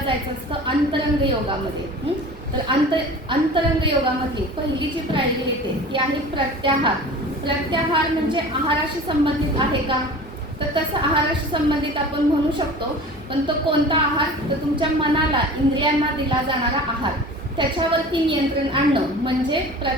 असतं अंतरंग योगामध्ये. तर अंतरंग योगामधली पहिली जी पायरी येते ती आहे प्रत्याहार. प्रत्याहार म्हणजे आहाराशी संबंधित आहे का, तर तसं आहाराशी संबंधित आपण म्हणू शकतो. पण तो कोणता आहार, तर तुमच्या मनाला, इंद्रियांना दिला जाणारा आहार, त्याच्यावरती नियंत्रण आणणं म्हणजे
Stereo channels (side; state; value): both; normal; correlation 0.39